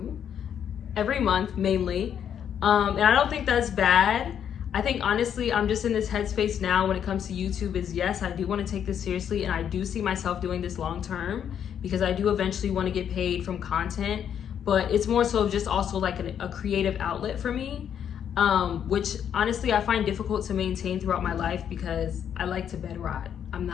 every month mainly. And I don't think that's bad. I think honestly, I'm just in this headspace now when it comes to YouTube is, yes, I do want to take this seriously, and I do see myself doing this long term, because I do eventually want to get paid from content, but it's more so just also like a creative outlet for me. Which honestly I find difficult to maintain throughout my life, because I like to bed rot. I'm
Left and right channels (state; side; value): quieter; right; 8.8 dB